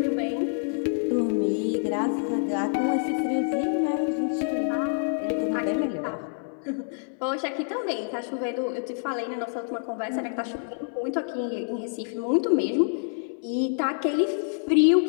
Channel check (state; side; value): silent; right; 60 dB below the other